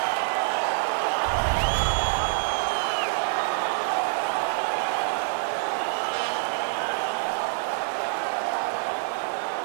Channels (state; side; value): silent; left; 61 dB below the other